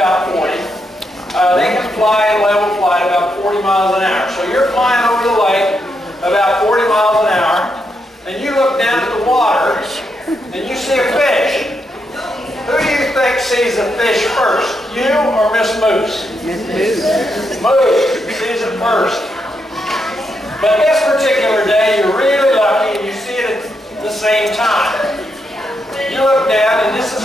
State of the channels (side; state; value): both; normal; correlation 0.81